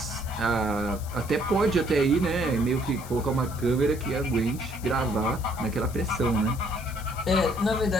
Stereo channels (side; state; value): left; noise; hiss, 17 dB below the sound